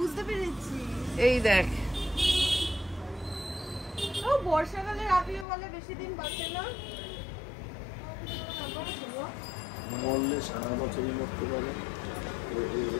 পেরেছি। এই দেখ, ও বর্ষাকালে রাপিও বলে বেশি দিন বাঁচে না। মরলে সারা বছরই মরতে পারে।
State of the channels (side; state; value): right; drops out; at 5.5 s